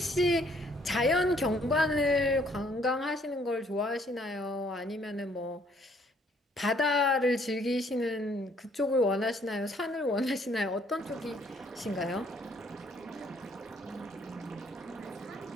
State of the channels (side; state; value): both; normal; correlation 0.64